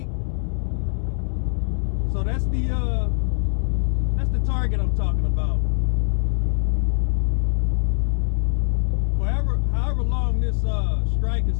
So that's the target I'm talking about. However long this strike is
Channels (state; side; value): silent; right; 64 dB below the other